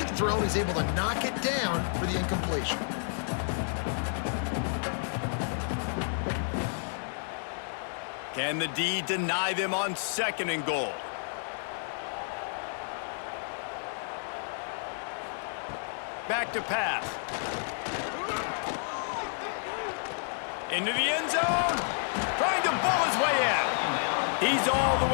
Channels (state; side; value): silent; right; 57 dB below the other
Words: thrown, he's able to knock it down for the incompletion. Can the D deny them on 2nd and goal? Back to pass. Into the end zone. Trying to bull his way in. He's all the